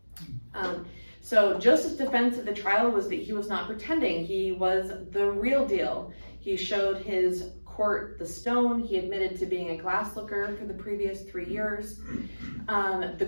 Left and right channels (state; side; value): inverted; both; correlation -1.00